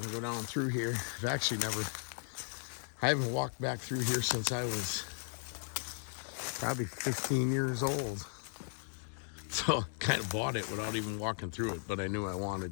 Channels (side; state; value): right; silent; 54 dB below the other